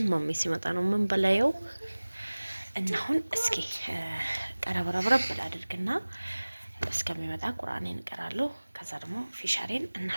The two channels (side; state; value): both; inverted; correlation -1.00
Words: ማሜ ሲመጣ ነው ምን በላየው እና አሁን እስኪ ቀረብረብረብ ብላድርግና እስከሚመጣ ቁርአኔን እቀራለሁ። ከዛ ደግሞ ፊሻሬን